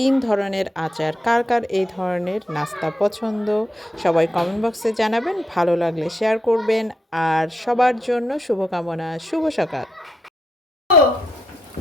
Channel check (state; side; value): normal; both; correlation 0.82